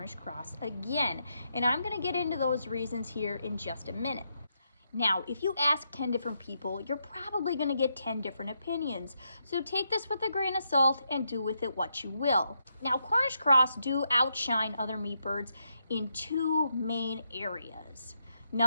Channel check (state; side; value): inverted; both; correlation -0.81